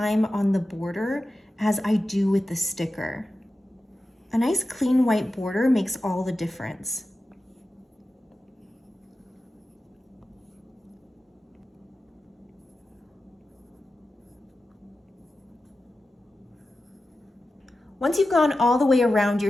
on the border as I do with the sticker. A nice clean white border makes all the difference. Once you've gone all the way around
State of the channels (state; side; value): normal; both; correlation 0.93